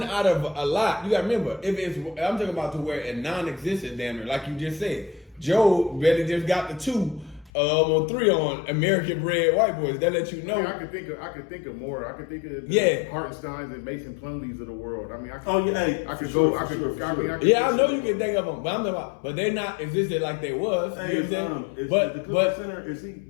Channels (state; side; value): drops out; right; at 7.5 s